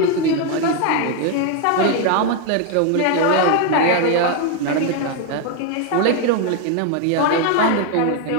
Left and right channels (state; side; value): different; both; correlation 0.01